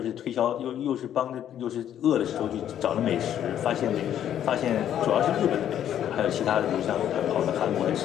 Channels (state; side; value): quieter; right; 10.4 dB